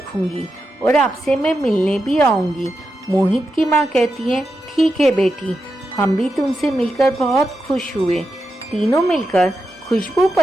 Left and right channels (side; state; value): both; normal; correlation 0.88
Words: और आपसे मैं मिलने भी आऊंगी। मोहित की माँ कहती है, ठीक है बेटी, हम भी तुमसे मिलकर बहुत खुश हुए। तीनों मिलकर खुशबू